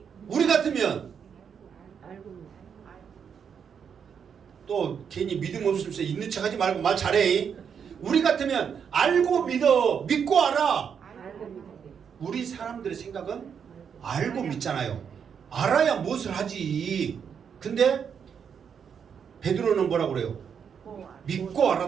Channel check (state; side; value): quieter; left; 7.2 dB